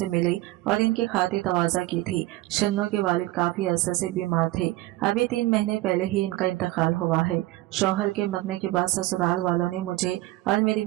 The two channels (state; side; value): quieter; left; 17.9 dB